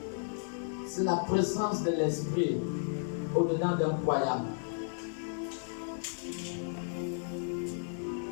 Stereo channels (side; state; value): right; silent; digital silence